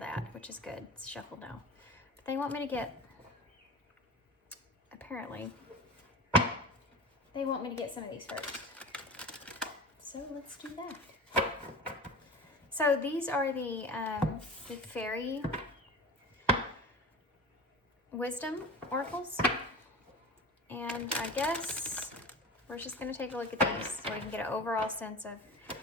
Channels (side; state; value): both; normal; correlation 0.32